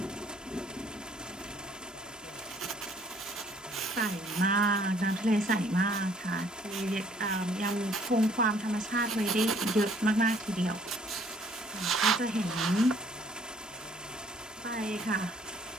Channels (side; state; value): both; normal; correlation 0.60